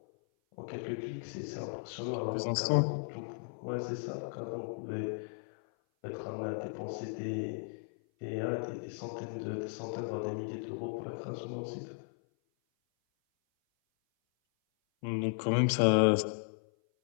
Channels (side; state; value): right; silent; 54 dB below the other